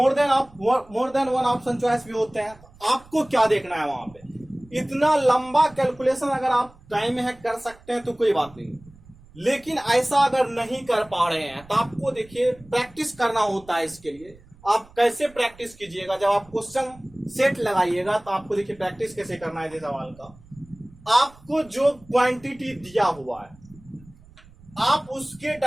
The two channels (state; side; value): noise; right; rumble, 24 dB below the sound